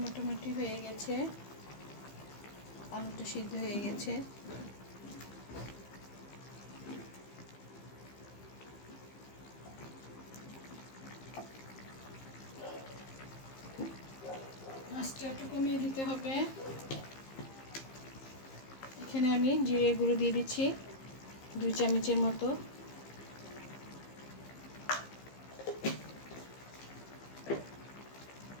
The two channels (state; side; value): late; right; 15 ms